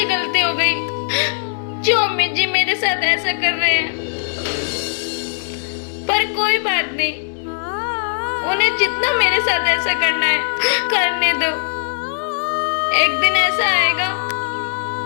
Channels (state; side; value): silent; right; digital silence